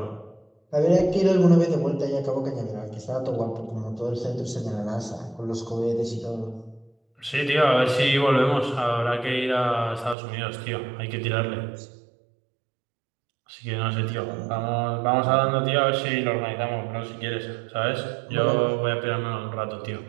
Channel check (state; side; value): drops out; left; at 10.2 s